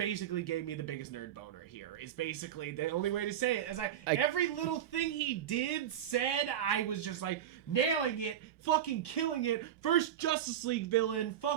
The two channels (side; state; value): left; quieter; 10.3 dB